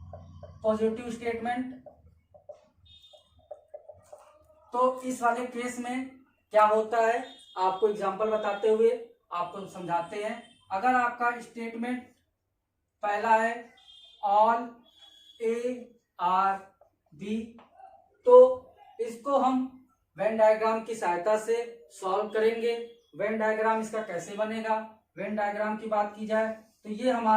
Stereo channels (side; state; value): both; identical; correlation 1.00